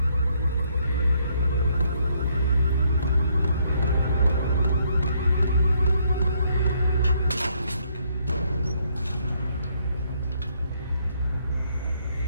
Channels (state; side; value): inverted; both; correlation -0.70